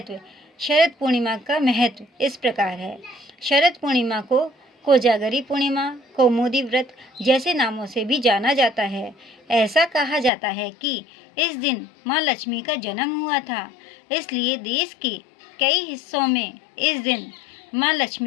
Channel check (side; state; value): right; drops out; at 10.3 s